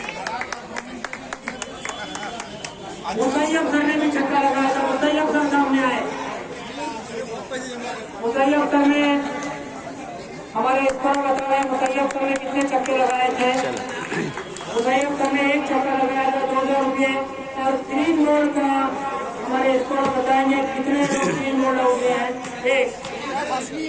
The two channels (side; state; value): both; identical; correlation 1.00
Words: मुतैयब सर ने भी छक्का लगाया था। मुतैयब सर सामने आए। मुतैयब सर ने हमारे स्कोर बता रहे हैं मुतैयब सर ने कितने छक्के लगाए थे। मुतैयब सर ने एक छक्का लगाया था 200 रुपये। और 3 बॉल का हमारे स्कोर बताएंगे कितने लोग 3 बॉल हो गए हैं। एक